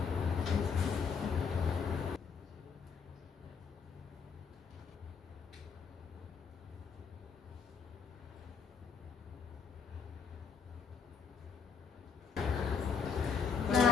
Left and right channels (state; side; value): quieter; right; 6.0 dB